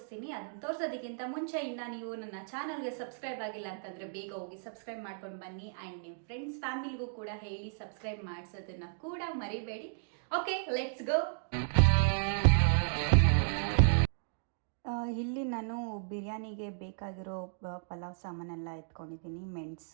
ಅದನ್ನು ತೋರಿಸೋದಕ್ಕಿಂತ ಮುಂಚೆ ಇನ್ನು ನೀವು ನನ್ನ ಚಾನಲ್ಗೆ ಸಬ್ಸ್ಕ್ರೈಬ್ ಆಗಿಲ್ಲ ಅಂತಂದರೆ ಬೇಗ ಹೋಗಿ ಸಬ್ಸ್ಕ್ರೈಬ್ ಮಾಡ್ಕೊಂಡು ಬನ್ನಿ. ಆ್ಯಂಡ್ ನಿಮ್ಮ ಫ್ರೆಂಡ್ಸ್ ಫ್ಯಾಮಿಲಿಗೂ ಕೂಡ ಹೇಳಿ ಸಬ್ಸ್ಕ್ರೈಬ್ ಮಾಡಿಸೋದನ್ನು ಕೂಡ ಮರಿಬೇಡಿ. Okay, let's go. ಇಲ್ಲಿ ನಾನು ಬಿರಿಯಾನಿಗೆ ಬೇಕಾಗಿರೋ ಪಲಾವ್ ಸಾಮಾನೆಲ್ಲ ಎತ್ಕೊಂಡಿದ್ದೀನಿ.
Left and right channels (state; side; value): silent; left; digital silence